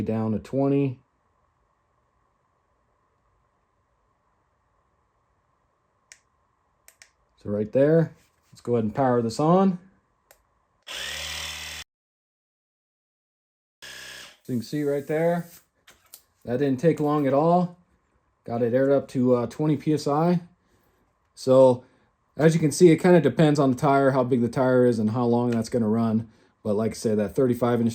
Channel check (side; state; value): both; identical; correlation 1.00